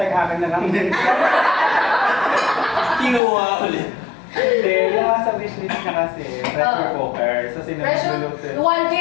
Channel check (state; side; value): drops out; right; at 3.2 s